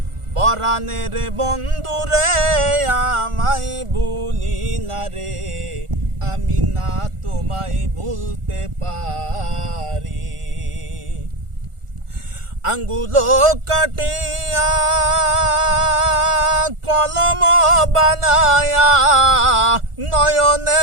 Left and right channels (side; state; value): left; late; 1.4 ms